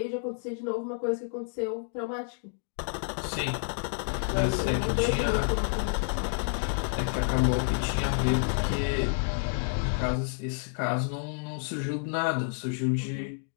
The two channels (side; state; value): right; silent; digital silence